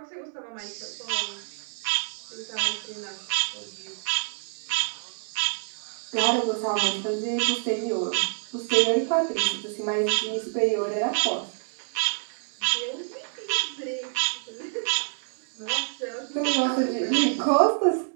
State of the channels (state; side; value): silent; left; 60 dB below the other